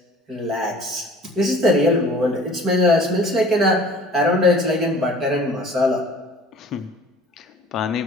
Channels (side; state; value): both; normal; correlation 0.48